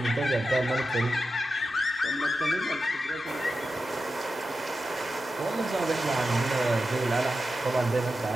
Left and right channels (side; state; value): both; normal; correlation 0.91